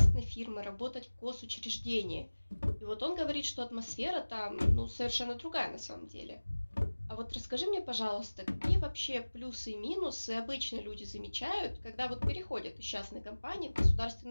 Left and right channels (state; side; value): inverted; both; correlation -1.00